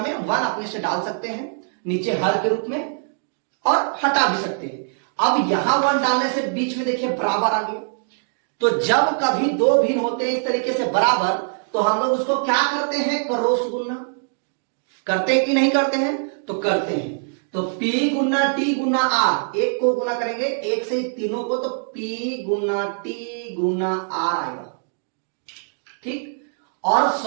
1 अपने से डाल सकते हैं नीचे हर के रूप में और हटा भी सकते हैं। अब यहां 1 डालने से बीच में देखिए बराबर आ गया, तो जब कभी दो भिन्न होते हैं इस तरीके से बराबर तो हम लोग उसको क्या करते हैं, क्रॉस गुना करते हैं कि नहीं करते हैं, तो करते हैं। तो P गुना T गुना R, एक को गुना करेंगे एक से तीनों को, तो P गुना T गुना R आएगा, ठीक। और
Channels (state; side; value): silent; left; digital silence